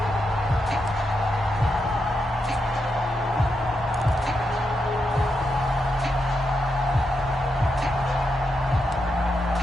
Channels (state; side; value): normal; both; correlation 0.84